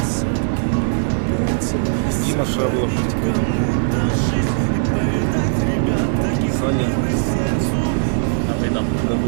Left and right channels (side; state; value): left; silent; digital silence